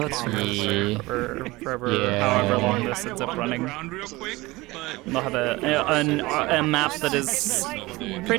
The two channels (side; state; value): left; quieter; 21.0 dB